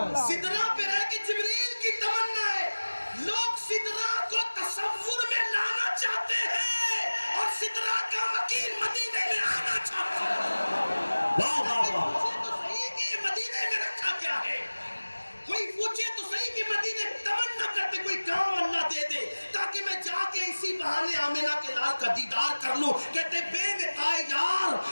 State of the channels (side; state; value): both; inverted; correlation -1.00